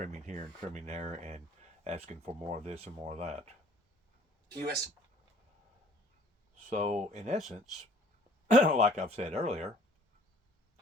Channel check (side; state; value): both; normal; correlation 0.54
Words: here and trimming there and asking for more of this and more of that. U.S. So in essence, like I've said earlier,